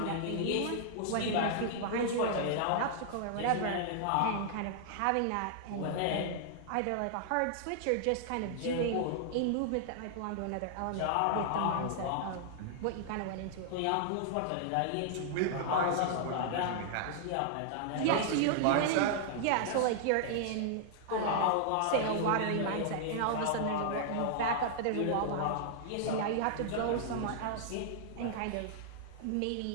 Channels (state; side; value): different; both; correlation -0.01